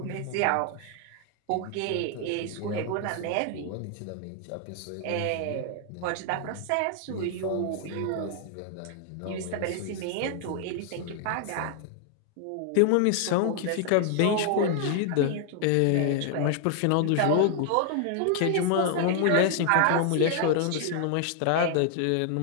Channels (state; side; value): different; both; correlation 0.00